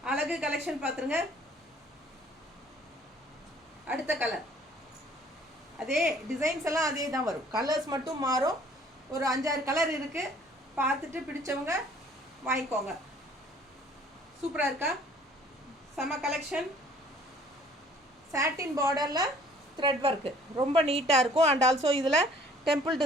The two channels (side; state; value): both; normal; correlation 0.56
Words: அழகு கலெக்ஷன் பார்த்துருங்க. அடுத்த கலர் அதே டிசைன்ஸ் எல்லாம் அதே தான் வரும், கலர்ஸ் மட்டும் மாறும். ஒரு 5-6 கலர் இருக்குது. பார்த்துட்டு பிடிச்சவங்க வாங்கிக்கோங்க. சூப்பராக இருக்கா? செம கலெக்ஷன். சாட்டின் பார்டரில் த்ரெட் ஒர்க்கு ரொம்ப நீட்டாக இருக்கும். அண்ட் ஆல்சோ இதில் டெம்பிள்